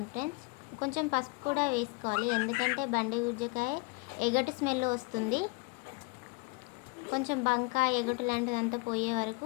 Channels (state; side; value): quieter; right; 28.8 dB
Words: ఫ్రెండ్స్. కొంచెం పసుపు కూడా వేసుకోవాలి, ఎందుకంటే బండి గుజ్జకాయ ఎగటు స్మెల్ వస్తుంది. కొంచెం బంక ఎగటు లాంటిదంతా పోయే వరకు